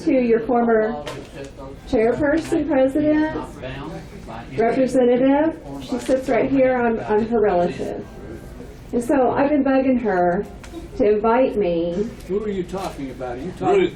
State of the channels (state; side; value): identical; both; correlation 1.00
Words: to your former chairperson, president, representative. She sits right here. I'm her relative. And so I've been bugging her to invite me. Who are you talking about? Are you talking